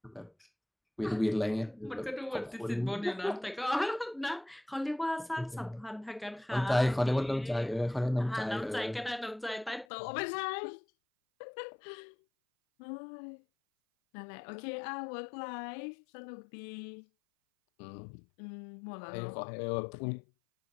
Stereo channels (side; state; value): right; drops out; at 9.9 s